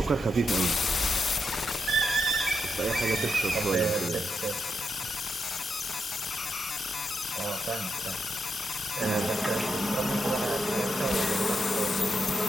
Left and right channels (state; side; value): normal; both; correlation 0.84